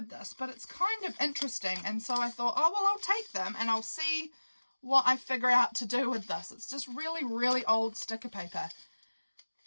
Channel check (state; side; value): inverted; both; correlation -1.00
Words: this, but it's kind of interesting. And so I thought, oh, well, I'll take them and I'll see what I figure out to do with this. It's just really, really old sticker paper.